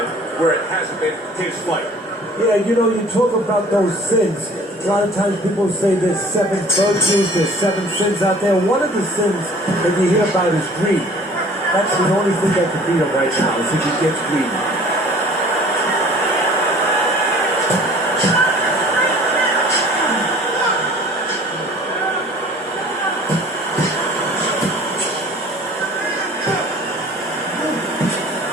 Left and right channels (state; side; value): normal; both; correlation 0.49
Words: where it hasn't been his fight. Yeah, you know, you talk about those sins. A lot of times people say there's 7 virtues, there's 7 sins out there. One of the sins that you hear about is greed. That's the only thing that can beat him right now, is if he gets greedy.